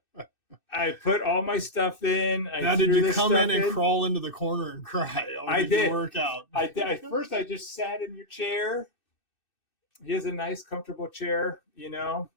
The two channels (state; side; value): late; right; 2.6 ms